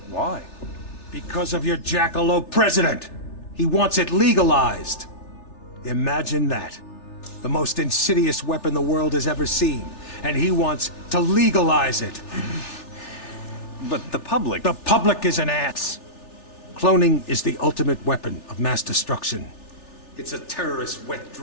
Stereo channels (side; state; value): right; late; 3.4 ms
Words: Why? Because of your jackalope president! He wants it legalized! Imagine that. The most insidious weapon the world has ever seen, and he wants to legalize it. But the public... The public is an ass! Cloning is the ultimate weapon of mass destruction. It's a terrorist's wet